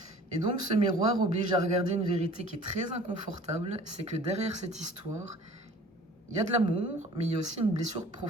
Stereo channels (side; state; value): both; normal; correlation 0.47